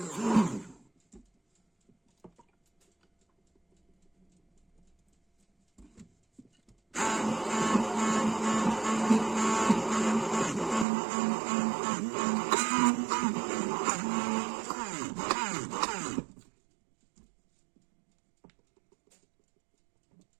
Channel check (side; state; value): left; drops out; at 10.9 s